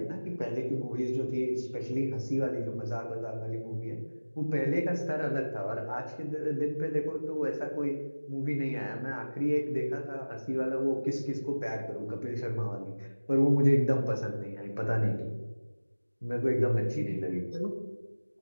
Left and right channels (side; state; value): both; inverted; correlation -1.00